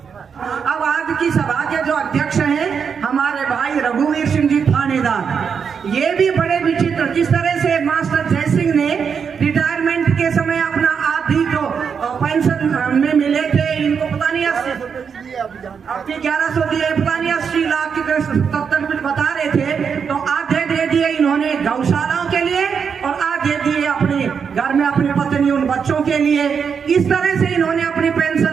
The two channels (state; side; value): quieter; left; 6.5 dB